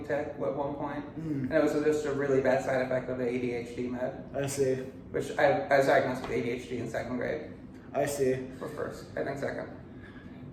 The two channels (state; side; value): identical; both; correlation 1.00